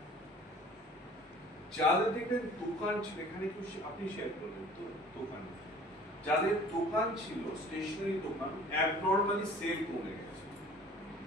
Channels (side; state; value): both; normal; correlation 0.49